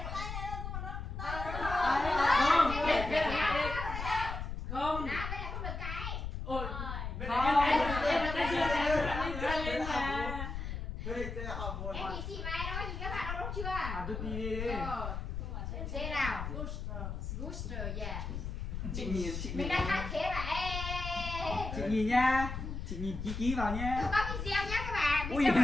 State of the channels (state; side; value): noise; left; rumble, 5 dB below the sound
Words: Không. Nào, bây giờ không được cái. Ôi. Bên này cái lên mà. Em nhìn chị mày đó, nhìn các bạn đâu đúng chưa? À tôi đi. Rồi. Dê nào. Booster, yeah. Chị nhìn Mình đang hát thế mà. Ê. Chị nhìn nha. Chị nhìn ký vào nha. Không có video nhá các bạn. Ui,